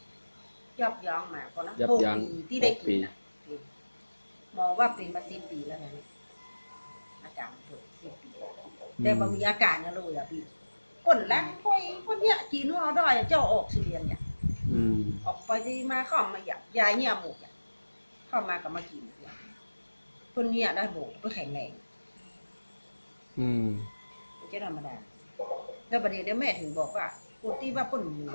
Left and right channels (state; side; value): inverted; both; correlation -1.00